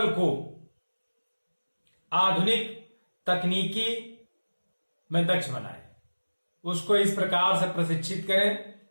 को आधुनिक तकनीकी में दक्ष बनाए। उसको इस प्रकार से प्रशिक्षित करें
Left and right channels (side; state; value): both; inverted; correlation -1.00